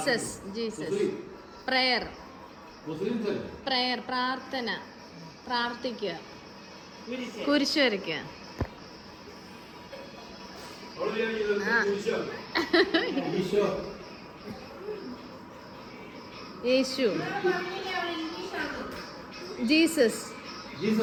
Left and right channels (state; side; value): identical; both; correlation 1.00